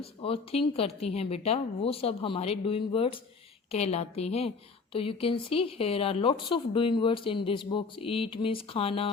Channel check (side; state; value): right; quieter; 4.6 dB